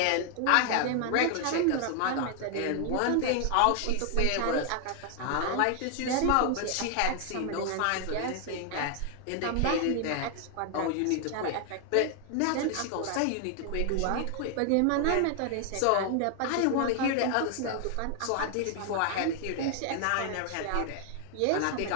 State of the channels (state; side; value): different; both; correlation 0.00